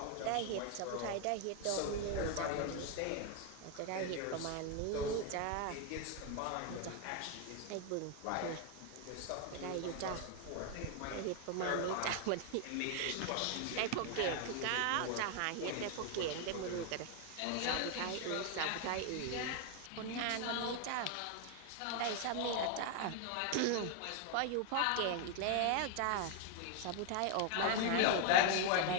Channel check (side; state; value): both; different; correlation 0.00